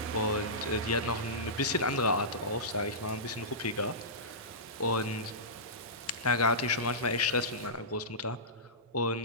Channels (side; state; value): both; normal; correlation -0.18